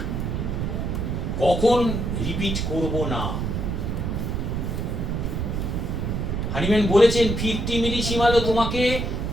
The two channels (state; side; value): noise; right; rumble, 1 dB below the sound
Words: কখন রিপিট করব না। হানিম্যান বলেছেন 50 মিলিসিমালও তোমাকে